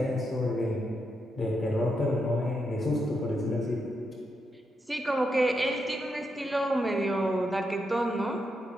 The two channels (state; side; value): normal; both; correlation 0.83